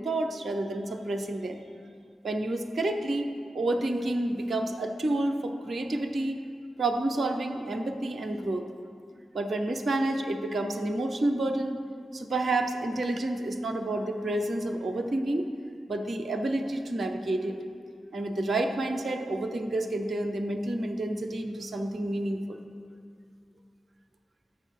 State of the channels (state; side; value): normal; both; correlation 0.88